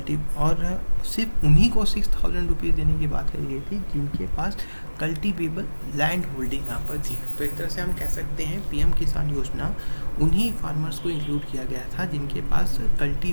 और सिर्फ उन्हीं को 6,000 रुपीज़ देने की बात करी गई थी जिनके पास कल्टीवेबल लैंड होल्डिंग यहाँ पर थी। तो एक तरह से हम कह सकते हैं पीएम किसान योजना उन्हीं फार्मर्स को इंक्लूड किया गया था जिनके पास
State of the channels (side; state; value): both; inverted; correlation -1.00